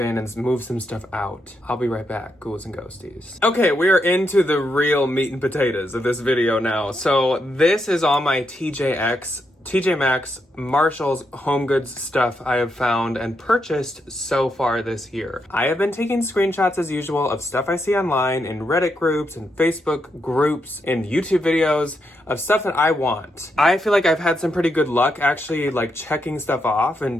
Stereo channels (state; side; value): normal; both; correlation 0.81